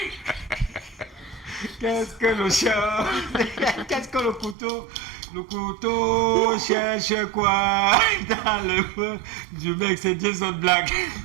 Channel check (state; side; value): drops out; left; at 4.5 s